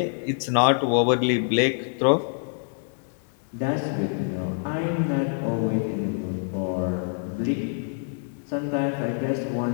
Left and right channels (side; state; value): right; silent; digital silence